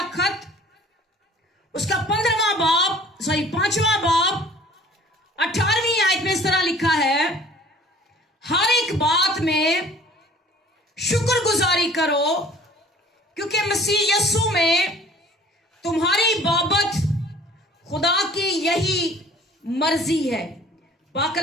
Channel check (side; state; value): both; normal; correlation 0.51